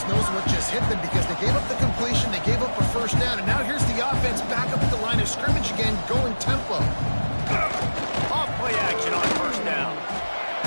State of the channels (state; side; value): inverted; both; correlation -1.00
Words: knows what just hit them because they gave up the completion, they gave up a first down, and now here's the offense back up at the line of scrimmage again, going tempo. Off play action on first down.